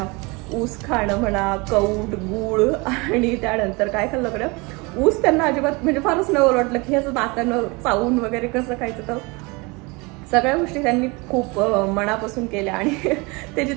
ऊस खाणं म्हणा, कौट, गूळ आणि त्यानंतर काय खाल्लं कडं ऊस त्यांना अजिबात म्हणजे फारच नवल वाटलं की ह्याचं नाकानं चावून वगैरे कसं खायचं. तर सगळ्या गोष्टी त्यांनी खूप मनापासून केल्या. आणि ते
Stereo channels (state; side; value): quieter; left; 26.9 dB